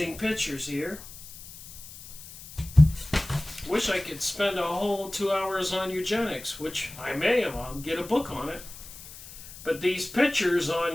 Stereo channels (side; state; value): left; noise; hiss, 16 dB below the sound